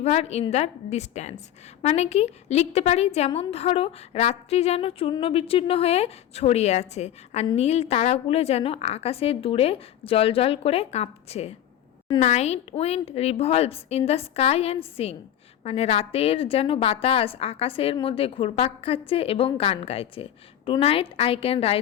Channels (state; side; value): quieter; right; 11.3 dB